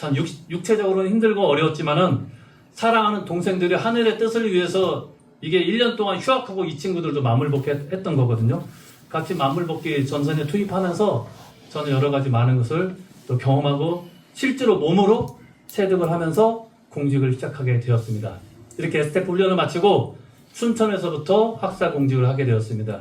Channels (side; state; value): both; identical; correlation 1.00